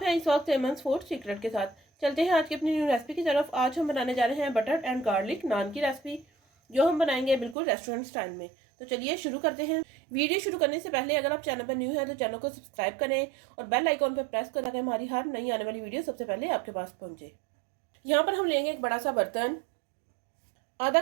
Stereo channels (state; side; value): drops out; left; at 7.6 s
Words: हैं इस वक्त एमन्स फूड सीक्रेट के साथ। चलते हैं आज की अपनी न्यू रेसिपी की तरफ। आज हम बनाने जा रहे हैं बटर एंड गार्लिक नान की रेसिपी, जो हम बनाएंगे बिल्कुल रेस्टोरेंट स्टाइल में। तो चलिए शुरू करते हैं। वीडियो शुरू करने से पहले अगर आप चैनल पर न्यू हैं तो चैनल को सब्सक्राइब करें और बेल आइकॉन पर प्रेस करें ताकि हमारी हर नई आने वाली वीडियो सबसे पहले आपके पास पहुंचे। यहाँ पर हम लेंगे एक बड़ा सा बर्तन। आधा